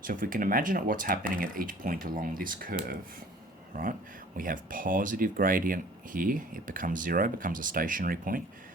So if we can imagine what's happening at each point along this curve, right? We have positive gradient here, it becomes 0, becomes a stationary point,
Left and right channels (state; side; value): normal; both; correlation 0.50